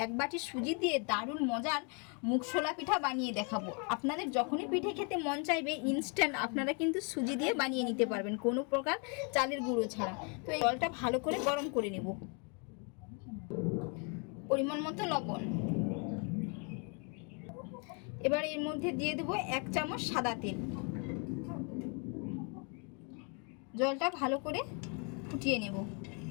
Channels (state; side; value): quieter; right; 36.4 dB